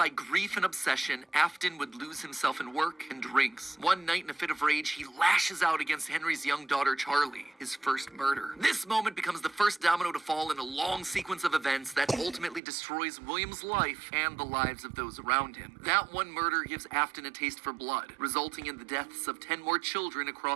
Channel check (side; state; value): left; drops out; at 12.6 s